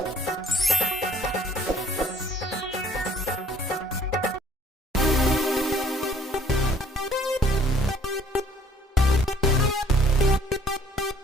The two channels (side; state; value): both; normal; correlation 0.58